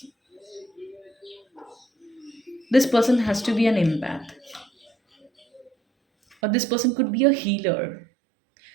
This person has to be an empath, or this person could be a healer.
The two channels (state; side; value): drops out; left; at 6.4 s